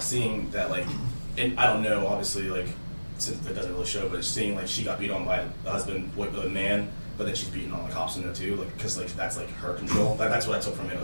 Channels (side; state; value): both; inverted; correlation -1.00